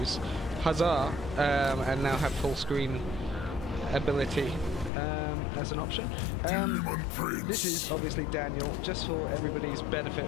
Huzzah! And now have full screen ability as an option. This is obviously Daniel, just for everybody's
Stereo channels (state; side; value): drops out; right; at 4.9 s